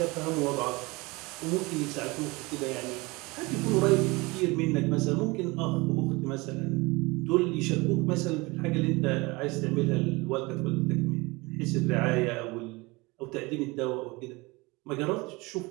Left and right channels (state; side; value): quieter; left; 24.2 dB